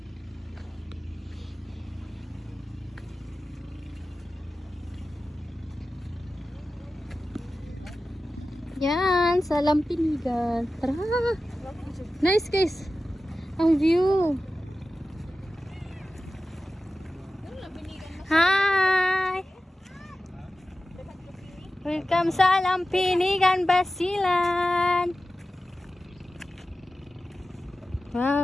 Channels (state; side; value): normal; both; correlation 0.94